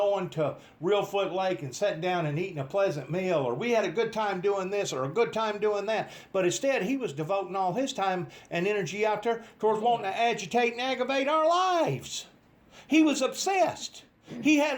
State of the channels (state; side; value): identical; both; correlation 1.00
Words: to Reelfoot Lake and sitting down and eating a pleasant meal, or we had a good time doing this or a good time doing that. But instead, he was devoting all his time and energy out there towards wanting to agitate and aggravate our lives. He was obsessed. He had